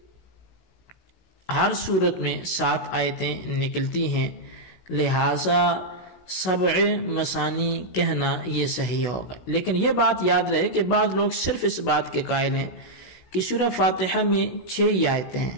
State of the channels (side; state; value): right; late; 16 ms